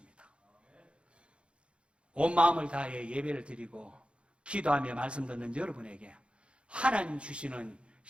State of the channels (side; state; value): left; late; 0.058 ms